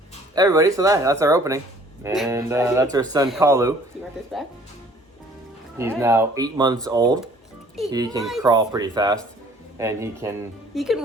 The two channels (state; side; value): normal; both; correlation 0.55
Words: Everybody, so that's our opening. And that's our son, Kalu. Do you want this back? He's now 8 months old. He can months. crawl pretty fast. And he can... He can